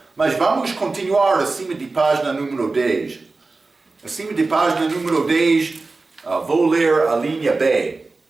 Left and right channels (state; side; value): quieter; left; 3.6 dB